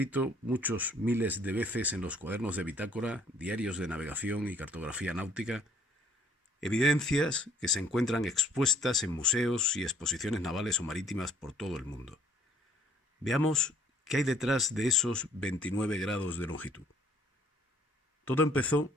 muchos miles de veces en los cuadernos de bitácora, diarios de navegación y cartografía náutica, evidencias que se encuentran expuestas en museos y exposiciones navales o marítimas por todo el mundo. Veamos qué hay detrás de esos 29 grados de longitud. Todo empezó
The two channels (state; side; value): normal; both; correlation 0.61